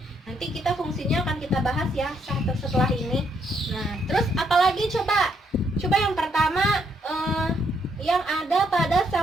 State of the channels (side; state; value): both; normal; correlation 0.74